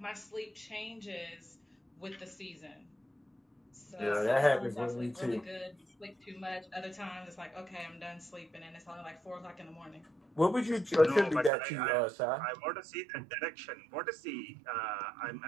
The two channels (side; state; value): left; drops out; at 11.5 s